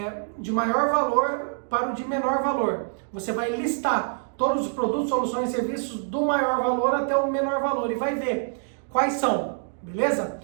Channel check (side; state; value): left; silent; digital silence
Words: para o de menor valor. Você vai listar todos os produtos, soluções e serviços do maior valor até o menor valor e vai ver quais são, beleza?